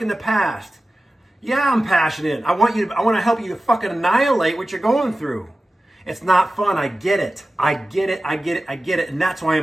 in the past. Yeah, I'm passionate. I want to help you to fucking annihilate what you're going through. It's not fun. I get it. I get it. And that's why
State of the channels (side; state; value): both; normal; correlation 0.95